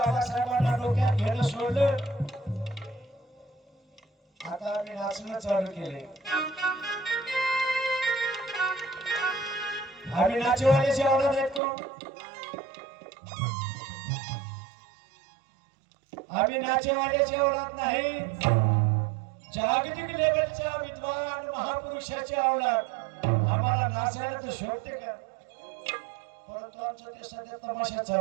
डोक्यात घेणं सोडलं. आता आम्ही नाचणं चालू केले. आम्ही नाचेवाल्याची आवडत आहेत कोण? आम्ही नाचेवाल्याची आवडत नाही, जागतिक लेवलच्या विद्वान महापुरुषाची आवडत. आम्हाला नाचायला तर शोभते का? परंतु आमचं ते सध्या तमाशा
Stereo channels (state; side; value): drops out; left; at 11.6 s